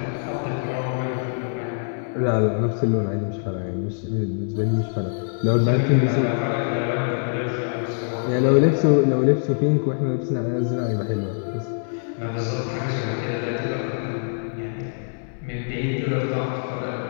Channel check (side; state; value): right; silent; digital silence